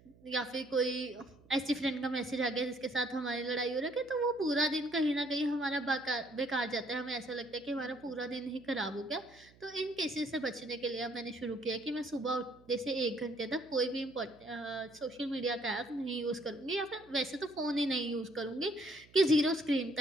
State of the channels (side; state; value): right; noise; hum, 26 dB below the sound